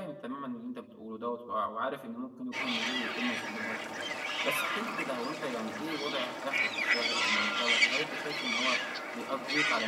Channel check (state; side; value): identical; both; correlation 1.00